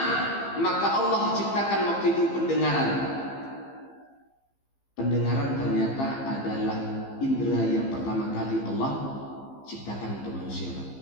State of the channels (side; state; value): right; late; 15 ms